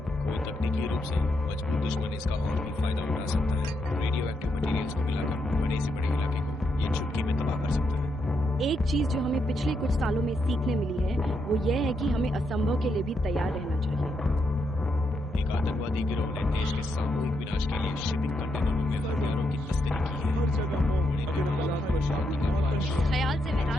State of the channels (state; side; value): normal; both; correlation 0.80